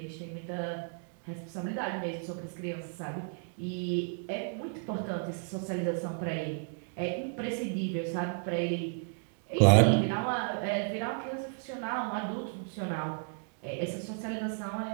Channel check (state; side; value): silent; left; 56 dB below the other